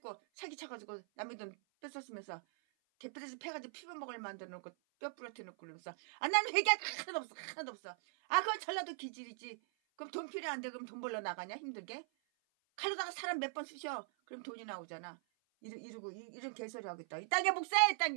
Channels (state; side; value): silent; left; 50 dB below the other